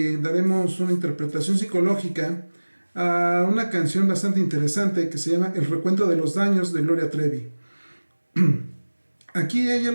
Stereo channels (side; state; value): both; inverted; correlation -1.00